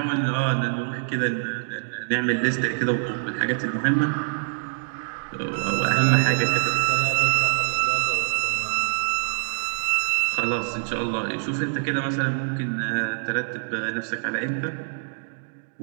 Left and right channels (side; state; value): left; silent; digital silence